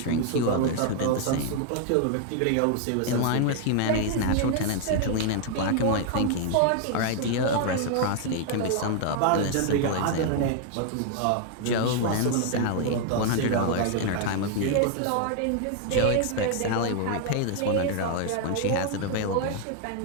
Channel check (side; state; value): both; different; correlation 0.00